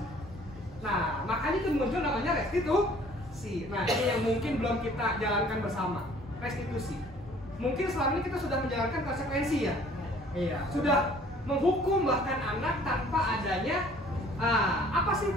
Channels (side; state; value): both; normal; correlation 0.55